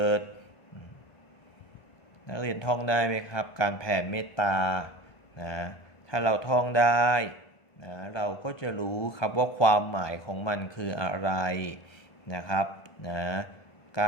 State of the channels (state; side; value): late; right; 1.2 ms